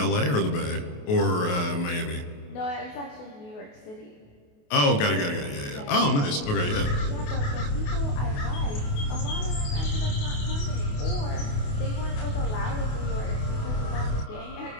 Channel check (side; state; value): right; late; 28 ms